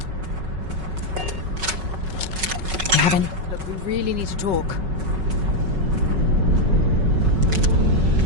Look, we really need to talk.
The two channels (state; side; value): late; left; 5.3 ms